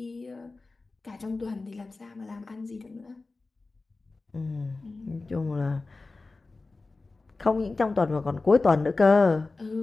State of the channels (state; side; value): quieter; right; 3.6 dB